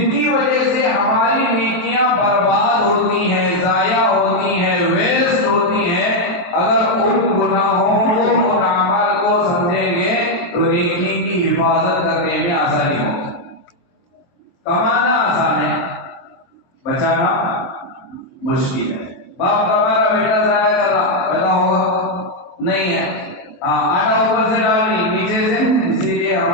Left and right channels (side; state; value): right; late; 23 ms